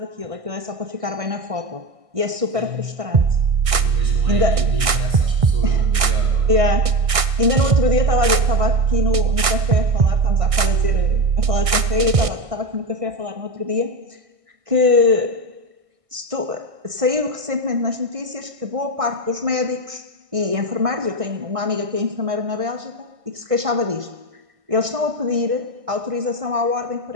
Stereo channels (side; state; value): left; late; 1.6 ms